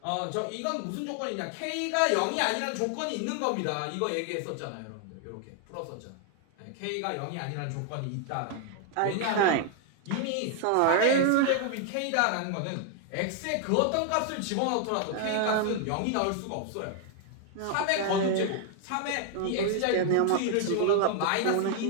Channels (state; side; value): different; both; correlation 0.00